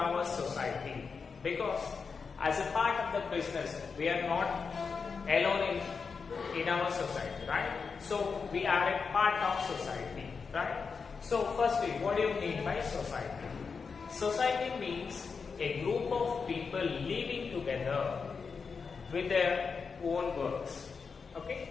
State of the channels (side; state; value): right; quieter; 5.3 dB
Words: society, because as a part of the business we are not alone in our society, right? So we are a part of society, right? So firstly, what do you mean by society? Society means a group of people living together with their own works.